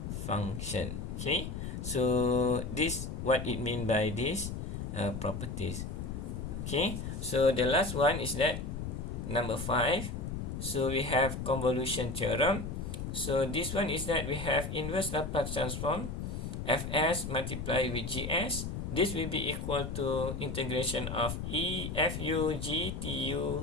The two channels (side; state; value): left; noise; rumble, 5 dB below the sound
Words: function. Okay, so this what it mean by these properties. Okay, so the last one is that number 5. So we have convolution theorem. So this one is that we have inverse Laplace transform fs multiplied with gs. This will be equal to integration of fu